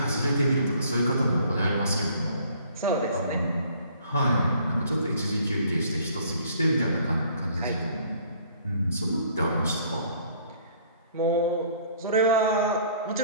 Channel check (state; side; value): inverted; both; correlation -0.57